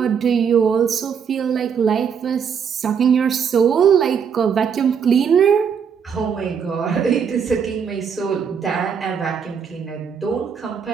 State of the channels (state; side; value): quieter; left; 7.0 dB